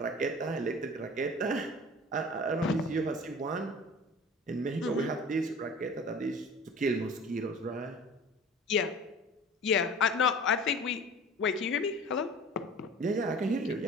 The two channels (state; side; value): normal; both; correlation 0.41